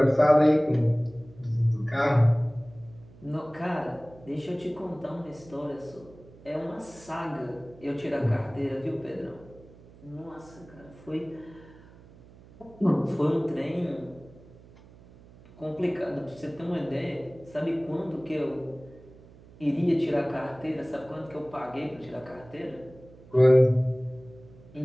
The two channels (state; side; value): noise; right; hum, 22 dB below the sound